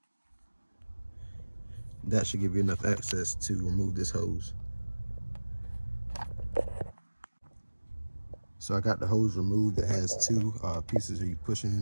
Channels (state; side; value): inverted; both; correlation -1.00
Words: That should give you enough access to remove this hose. So I got the hose removed. It has two pieces that you push